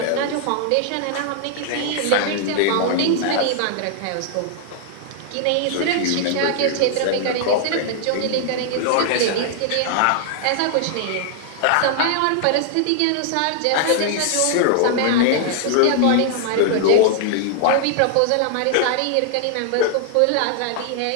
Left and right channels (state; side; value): different; both; correlation 0.00